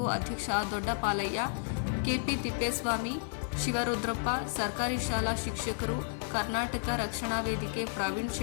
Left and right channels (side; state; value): right; silent; digital silence